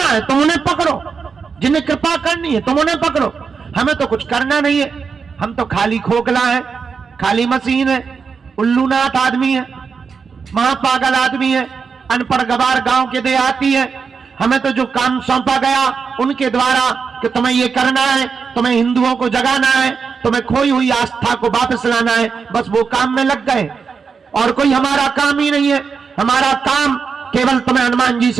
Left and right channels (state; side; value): quieter; left; 5.6 dB